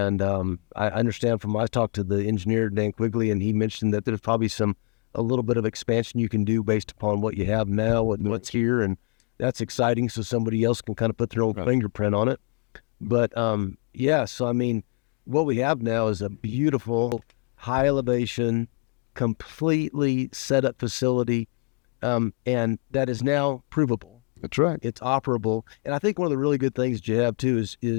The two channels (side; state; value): right; quieter; 32.3 dB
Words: I understand I talked to the engineer, Dan Quigley, and he mentioned that there's probably a little bit of expansion you can do based upon what you have now with what's here. And that's exciting. So somebody else can kind of put their own fingerprint on it. But so I mean, what we have now is a beautiful, high elevation, completely set up facility, and that is now provable. That's right. It's operable. And I think one of the really good things that you have too